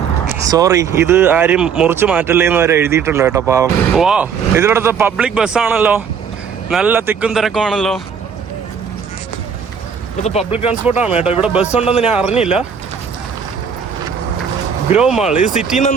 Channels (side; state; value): left; quieter; 6.8 dB